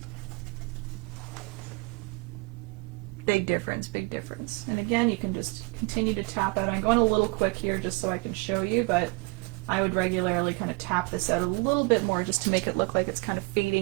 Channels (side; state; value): left; quieter; 28.9 dB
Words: Big difference, big difference. And again, you can just continue to tap out. I'm going a little quick here just so I can show you, but I would regularly kind of tap this out a little bit more just to make it look like it's kind of